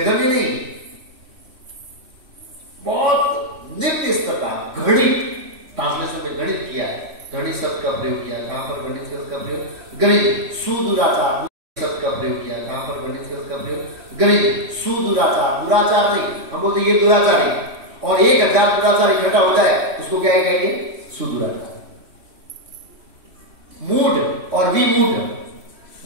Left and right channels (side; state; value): left; late; 3.1 ms